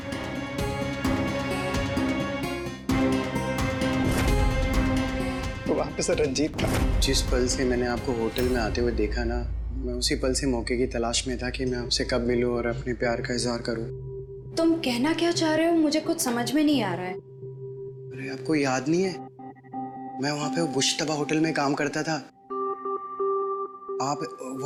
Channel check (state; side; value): identical; both; correlation 1.00